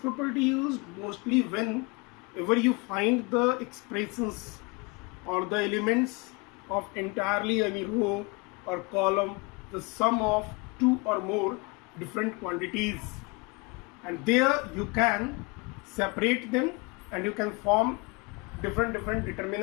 used mostly whenever you find the expressions or the elements of entirely any row or column, the sum of two or more different quantities, and there you can separate them and you can form different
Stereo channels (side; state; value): right; quieter; 28.7 dB